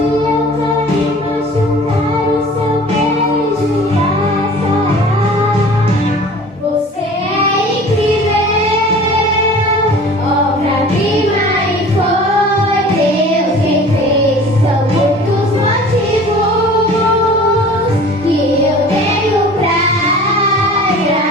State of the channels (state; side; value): normal; both; correlation 0.44